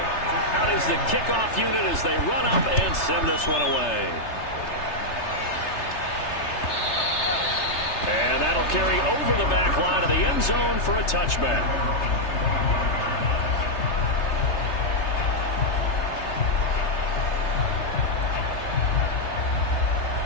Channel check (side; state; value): right; late; 3.3 ms